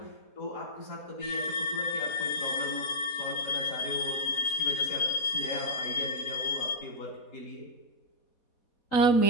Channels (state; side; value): late; right; 4.2 ms